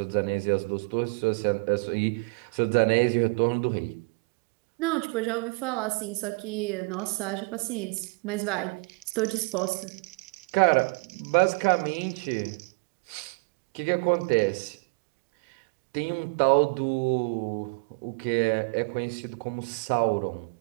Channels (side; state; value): left; quieter; 32.2 dB